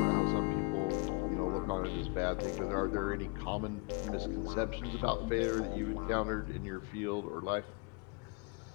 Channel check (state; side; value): quieter; right; 30.1 dB